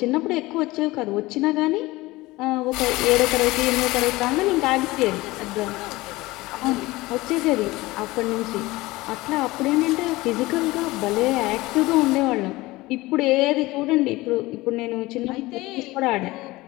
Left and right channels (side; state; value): right; quieter; 20.0 dB